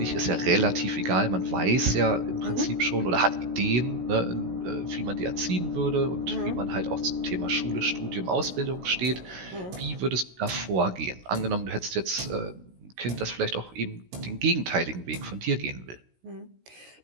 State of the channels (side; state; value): left; late; 16 ms